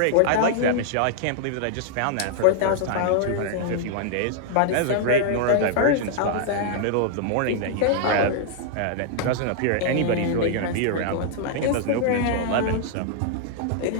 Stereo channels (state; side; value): different; both; correlation -0.01